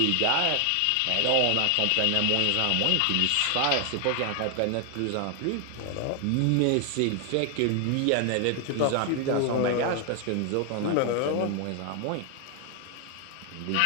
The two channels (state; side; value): different; both; correlation 0.00